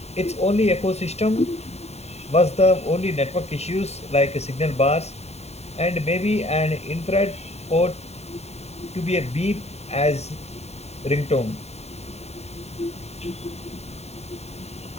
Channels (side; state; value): right; late; 0.31 ms